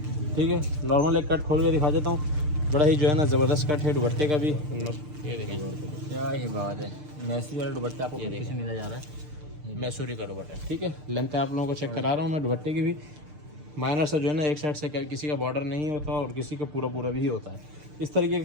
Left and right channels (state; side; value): late; left; 6.6 ms